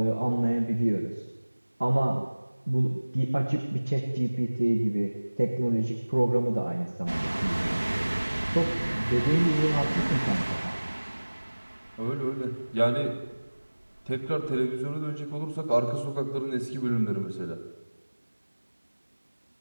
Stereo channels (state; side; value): inverted; both; correlation -1.00